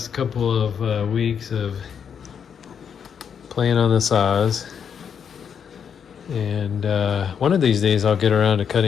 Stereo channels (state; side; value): quieter; right; 7.4 dB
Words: couple of weeks of playing on the saws. And one of these days I'll get around to